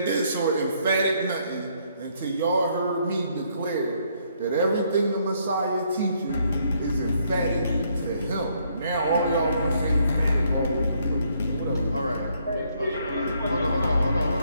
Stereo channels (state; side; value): inverted; both; correlation -0.70